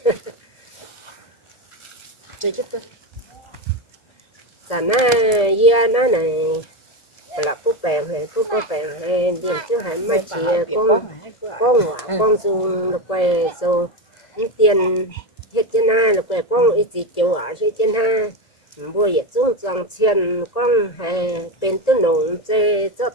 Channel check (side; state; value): right; late; 1.8 ms